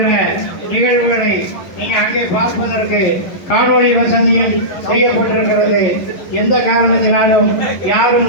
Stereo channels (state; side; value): late; right; 11 ms